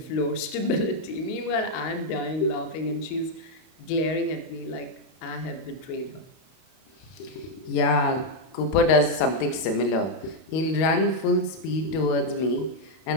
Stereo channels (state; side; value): late; right; 32 ms